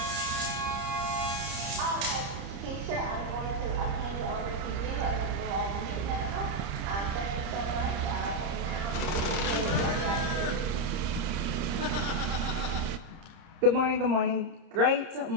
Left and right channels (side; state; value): left; late; 30 ms